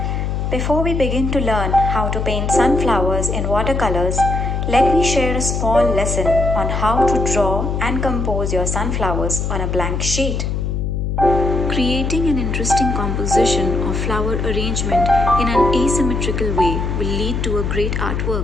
Before we begin to learn how to paint sunflowers in watercolors, let me share a small lesson on how to draw and compose your sunflowers on a blank sheet. Creating an interesting composition or flower arrangement in an asymmetrical way will lead to a great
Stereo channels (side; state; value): left; noise; hum, 1 dB below the sound